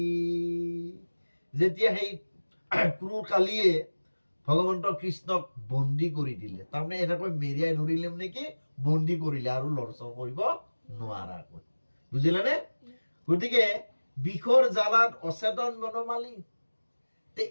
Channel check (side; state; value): both; inverted; correlation -1.00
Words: যেতিয়া সেই ক্ৰূৰ কালীয়ে ভগৱন্ত কৃষ্ণক বন্দী কৰি দিলে তাৰমানে এনেকৈ মেৰিয়াই ধৰিলে মানে কি বন্দী কৰিলে আৰু লৰচৰ কৰিব নোৱাৰাকৈ বুজিলানে গতিকে বিষৰ জালাত অচেতন বনমালী তে